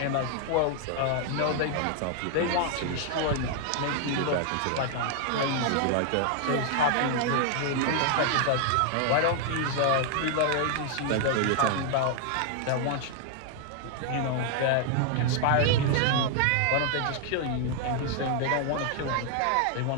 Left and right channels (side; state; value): both; different; correlation 0.00